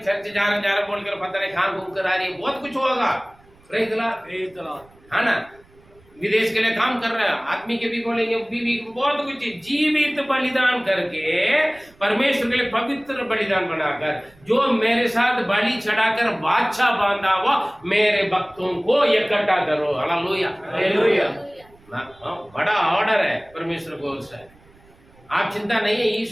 चर्च जा रहा बोलकर पता नहीं कहां घूम कर आ रही है, बहुत कुछ होगा। प्रेज़ द लॉर्ड, है ना, विदेश के लिए काम कर रहा है, आदमी के भी बोलेंगे, बीवी बहुत कुछ। जीवित बलिदान करके परमेश्वर के लिए पवित्र बलिदान बनाकर, जो मेरे साथ बलि चढ़ाकर बादशाह बांधा हुआ मेरे भक्तों को इकट्ठा करो। Hallelujah, hallelujah. बड़ा ऑर्डर है परमेश्वर की ओर से। आप चिंता नहीं है,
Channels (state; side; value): noise; right; rumble, 29 dB below the sound